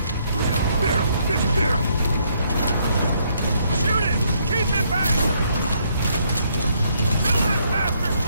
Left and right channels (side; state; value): both; inverted; correlation -0.71